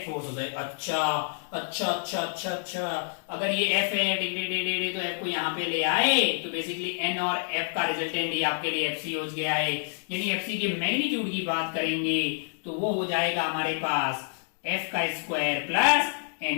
फोर्स हो जाएगा। अच्छा, अगर ये F है तो F को यहाँ पे ले आए तो बेसिकली N और F का रिजल्टेंट ही आपके लिए FC हो गया है, यानी FC के मैग्नीट्यूड की बात करेंगे तो वो हो जाएगा हमारे पास F का स्क्वायर प्लस N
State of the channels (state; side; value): silent; right; digital silence